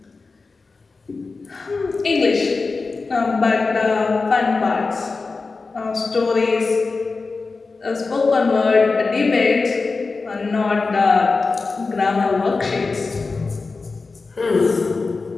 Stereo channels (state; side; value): quieter; right; 4.1 dB